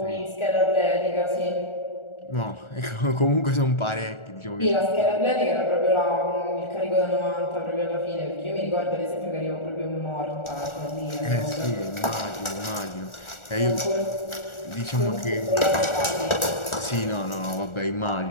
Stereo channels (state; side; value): late; right; 1.4 ms